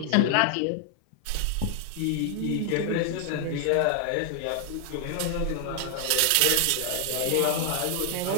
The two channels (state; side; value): different; both; correlation 0.00